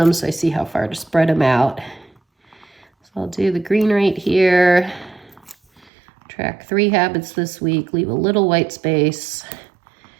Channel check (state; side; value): drops out; left; at 5.9 s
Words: so I see how far to spread them out. So I'll do the green right here. Track 3 habits this week. Leave a little white space